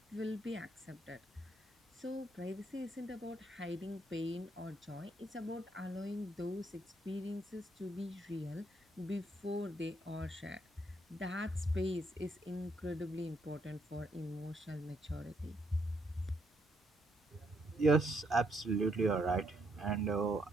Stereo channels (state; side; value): normal; both; correlation 0.74